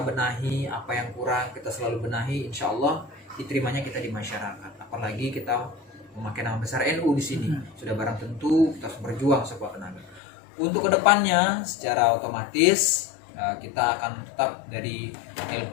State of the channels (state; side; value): drops out; right; at 10.2 s